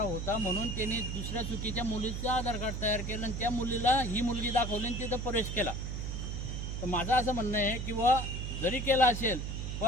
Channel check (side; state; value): right; noise; hum, 4 dB below the sound